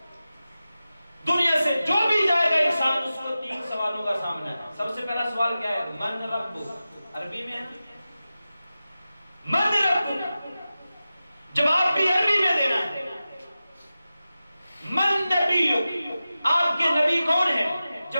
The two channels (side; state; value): both; inverted; correlation -0.94